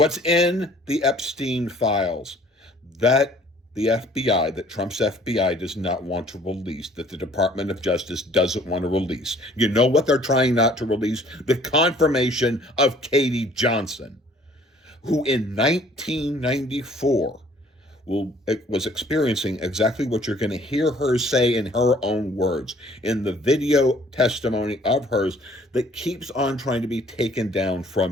in the Epstein files that the FBI, that Trump's FBI does not want to release, that the Department of Justice doesn't want to release. You know what they're trying not to release? The confirmation of Katie Johnson, who in 1994 was experiencing exactly what you're going to hear her say in her own words in the video testimony of hers that keeps on trying to be taken down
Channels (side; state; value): both; normal; correlation 0.56